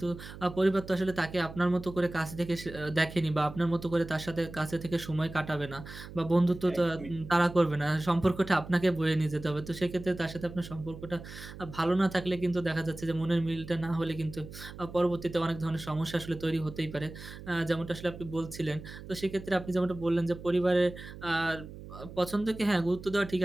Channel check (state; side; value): noise; right; hum, 14 dB below the sound